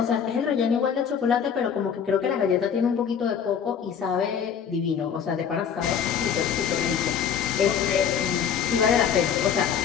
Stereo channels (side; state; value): right; quieter; 7.6 dB